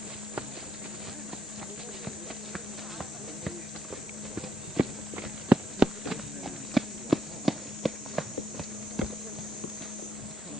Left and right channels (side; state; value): both; normal; correlation 0.74